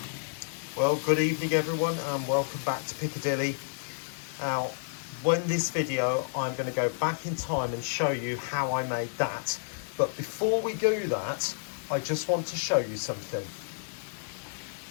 Well, good evening everyone and welcome back to Piccadilly. Now, in this video, I'm going to go back in time and show you how I made that. But before we do that, I just want to show you something.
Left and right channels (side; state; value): right; silent; 58 dB below the other